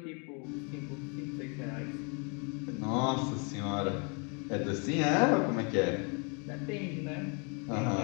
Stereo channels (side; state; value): right; quieter; 35.4 dB